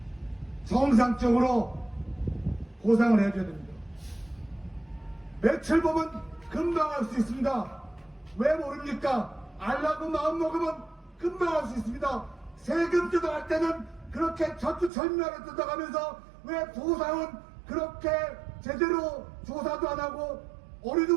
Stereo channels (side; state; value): left; drops out; at 14.9 s